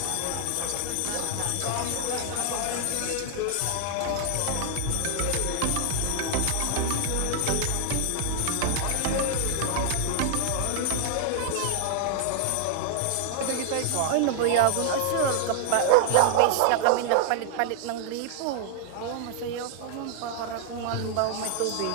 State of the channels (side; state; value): both; different; correlation -0.01